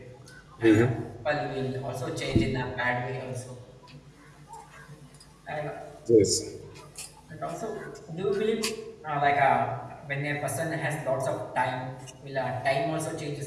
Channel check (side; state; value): both; identical; correlation 1.00